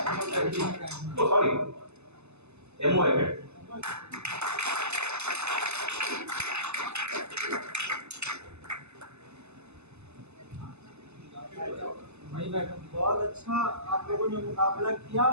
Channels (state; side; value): late; left; 0.81 ms